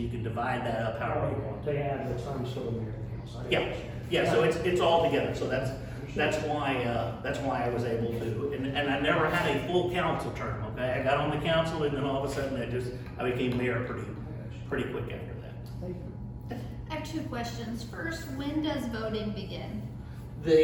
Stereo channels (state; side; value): identical; both; correlation 1.00